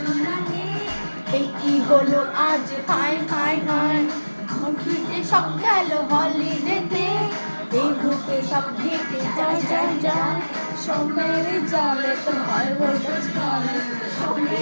এই হলো আজ হায় হায় হায় ঘুরতে সব গেল হলিডেতে এই গ্রুপে সব ঘেটে যাই যাই যাই সোমের জালে তোর হাই ভোল্টেজ গালে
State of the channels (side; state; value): both; inverted; correlation -1.00